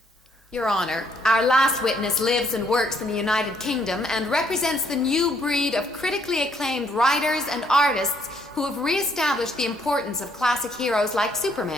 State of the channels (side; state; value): both; normal; correlation 0.68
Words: Your Honor, our last witness lives and works in the United Kingdom and represents the new breed of critically acclaimed writers and artists who have reestablished the importance of classic heroes like